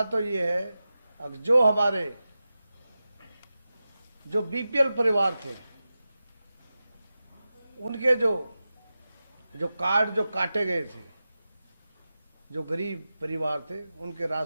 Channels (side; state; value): both; inverted; correlation -0.93